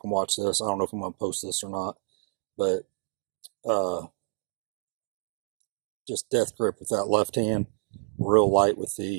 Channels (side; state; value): left; silent; digital silence